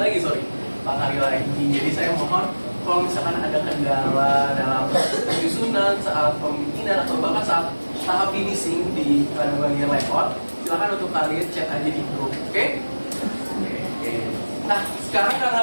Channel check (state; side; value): inverted; both; correlation -1.00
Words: lagi, sorry, 4 hari lagi. Jadi saya mohon kalau misalkan ada kendala dalam penyusunan saat pembikinan atau bahkan saat tahap finishing di bagian layout, silakan untuk kalian chat aja di grup, oke? Oke. Nah, sekarang karena